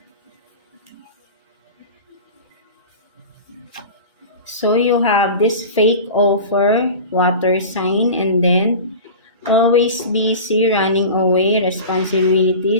So you have this fake offer, water sign, and then always busy, running away,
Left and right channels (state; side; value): inverted; both; correlation -0.33